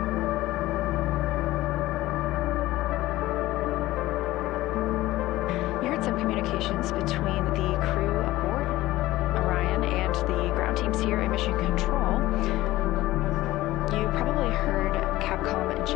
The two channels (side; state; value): right; quieter; 17.1 dB